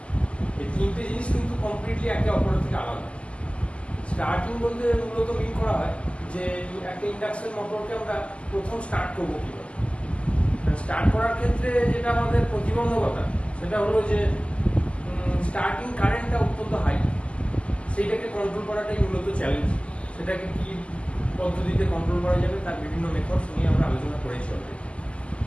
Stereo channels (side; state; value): right; late; 0.056 ms